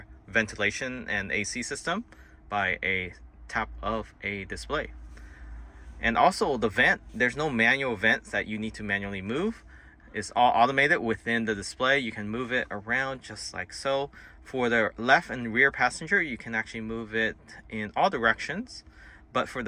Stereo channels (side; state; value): both; identical; correlation 1.00